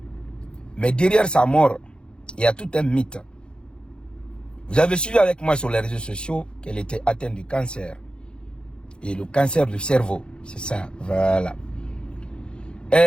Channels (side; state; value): right; late; 0.052 ms